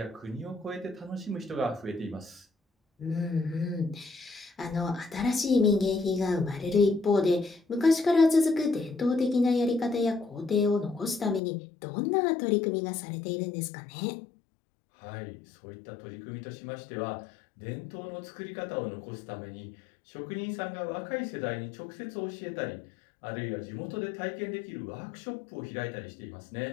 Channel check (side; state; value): right; drops out; at 11.4 s